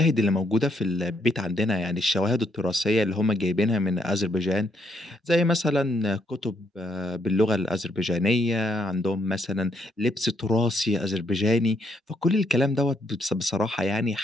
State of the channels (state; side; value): normal; both; correlation 0.73